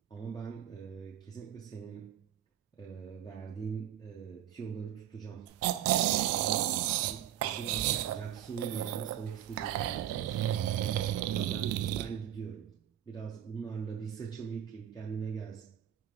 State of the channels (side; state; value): left; quieter; 10.8 dB